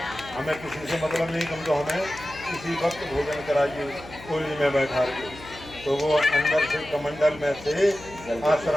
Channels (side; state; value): left; noise; hum, 17 dB below the sound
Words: हमें किसी से मतलब नहीं, तुम तो हमें किसी वक्त भोजन कराइए कोली में बैठा के। तो वो अंदर से कमंडल में से,